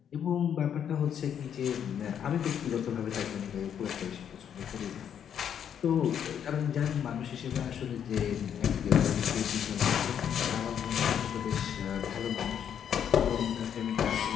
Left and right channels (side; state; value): right; quieter; 8.7 dB